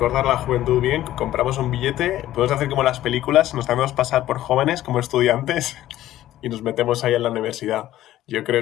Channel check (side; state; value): right; quieter; 14.0 dB